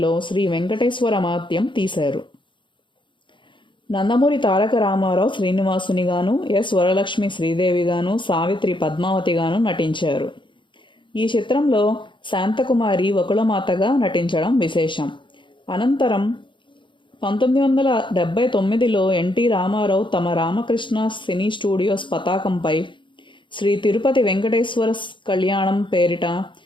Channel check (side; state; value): right; late; 0.23 ms